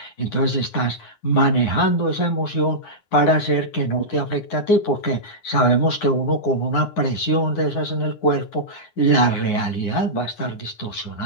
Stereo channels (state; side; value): late; right; 9.6 ms